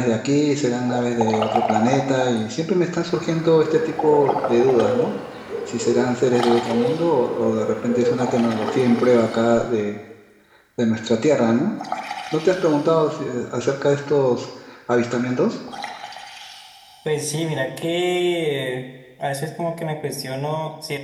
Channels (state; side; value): identical; both; correlation 1.00